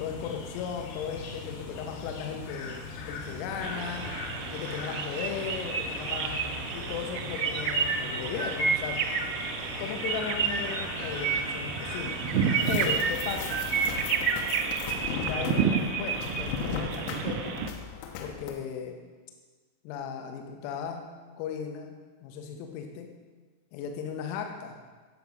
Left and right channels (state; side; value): late; right; 33 ms